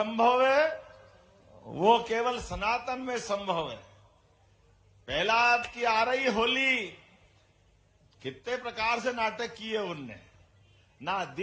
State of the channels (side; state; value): both; identical; correlation 1.00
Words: है वो केवल सनातन में संभव है। प्रहलाद की आ रही होली, कितने प्रकार से नाटक किए उनने, ना